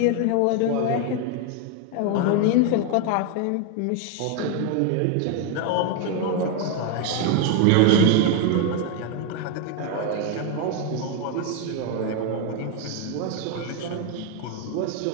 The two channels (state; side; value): different; both; correlation 0.01